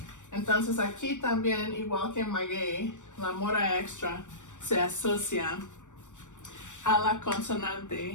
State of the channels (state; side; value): late; right; 0.85 ms